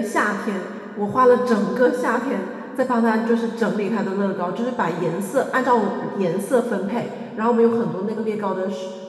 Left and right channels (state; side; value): identical; both; correlation 1.00